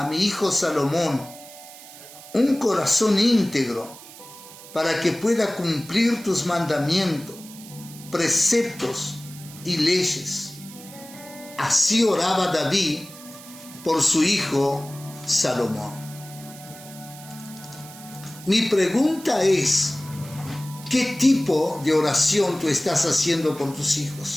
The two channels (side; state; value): right; noise; hiss, 17 dB below the sound